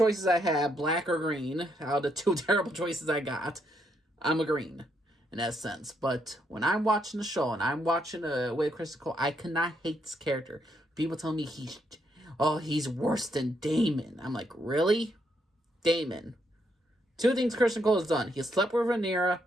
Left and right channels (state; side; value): normal; both; correlation 0.76